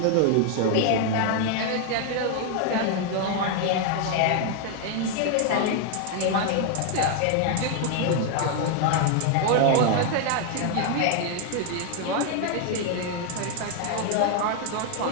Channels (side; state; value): both; different; correlation 0.01